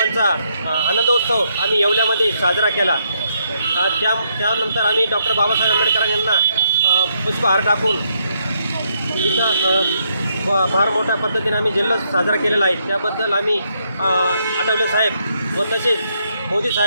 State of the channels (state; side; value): inverted; both; correlation -0.76